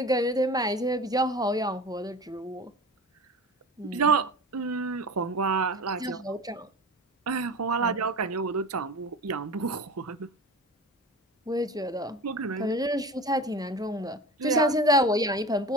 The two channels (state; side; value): normal; both; correlation 0.33